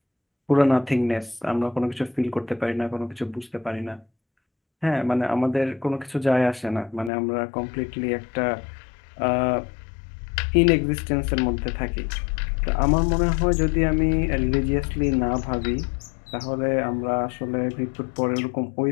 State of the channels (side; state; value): right; drops out; at 7.1 s